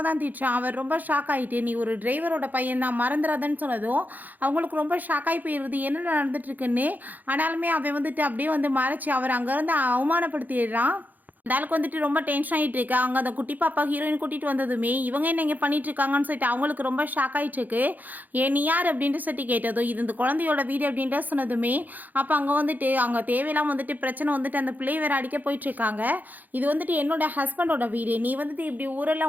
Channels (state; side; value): late; left; 0.083 ms